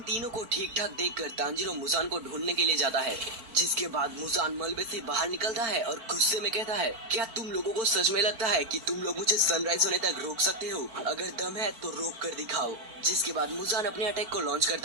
तीनों को ठीक ठाक देखकर तांजीरो मुजान को ढूंढने के लिए जाता है, जिसके बाद मुजान मलबे से बाहर निकलता है और गुस्से में कहता है, क्या तुम लोगों को सच में लगता है कि तुम लोग मुझे सनराइज होने तक रोक सकते हो? अगर दम है तो रोक कर दिखाओ। जिसके बाद मुजान अपने अटैक को लॉन्च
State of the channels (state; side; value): late; left; 4.5 ms